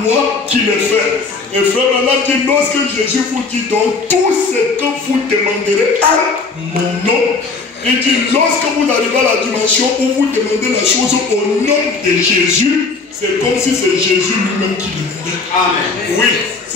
qui les fait. Et frère Branham dit, lorsque Jésus vous dit donc, tout ce que vous demanderez à mon nom, Il dit, lorsque vous arrivez à la dimension où vous demandez la chose au nom de Jésus, c'est comme si c'est Jésus lui-même qui demandait. Amen. Oui,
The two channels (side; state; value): right; quieter; 4.3 dB